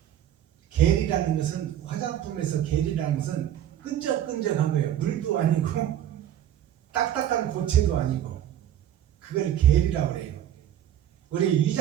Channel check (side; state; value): left; quieter; 11.1 dB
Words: 겔이라는 것은 화장품에서 겔이라는 것은 끈적끈적한 거예요. 물도 아니고 딱딱한 고체도 아니고 그걸 겔이라고 그래요. 우리